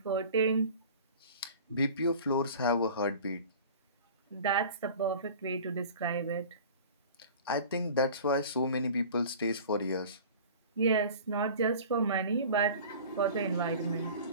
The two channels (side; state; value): both; inverted; correlation -0.41